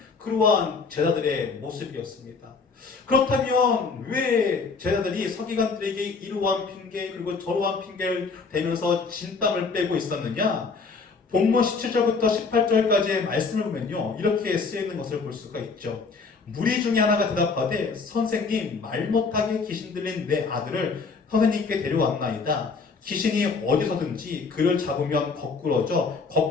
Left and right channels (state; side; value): quieter; right; 4.6 dB